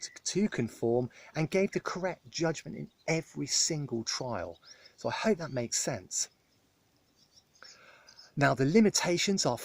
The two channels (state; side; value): identical; both; correlation 1.00